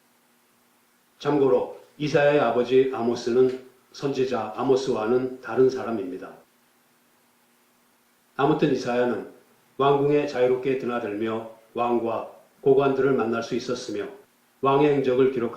참고로 이사야의 아버지 아모스는 선지자 아모스와는 다른 사람입니다. 아무튼 이사야는 왕궁에 자유롭게 드나들며 왕과 고관들을 만날 수 있었으며 왕의 행적을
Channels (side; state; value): both; identical; correlation 1.00